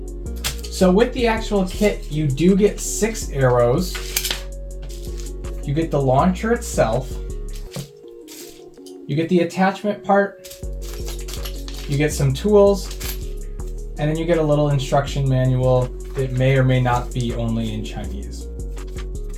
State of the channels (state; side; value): identical; both; correlation 1.00